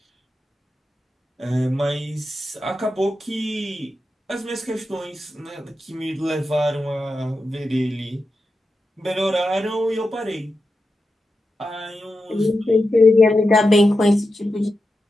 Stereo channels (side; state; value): both; normal; correlation 0.90